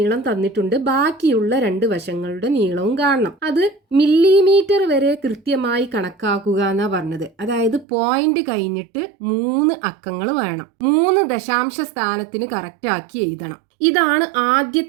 തന്നിട്ടുണ്ട്, ബാക്കിയുള്ള 2 വശങ്ങളുടെ നീളവും കാണണം. അത് മില്ലിമീറ്റർ വരെ കൃത്യമായി കണക്കാക്കുക എന്നാ പറഞ്ഞത്. അതായത് പോയിന്റ് കഴിഞ്ഞിട്ട് 3 അക്കങ്ങൾ വേണം. 3 ദശാംശ സ്ഥാനത്തിന് കറക്റ്റ് ആക്കി എഴുതണം. ഇതാണ്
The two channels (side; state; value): left; drops out; at 7.9 s